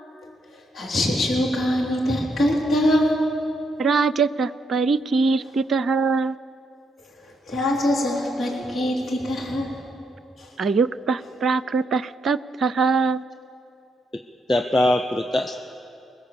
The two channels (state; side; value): normal; both; correlation 0.77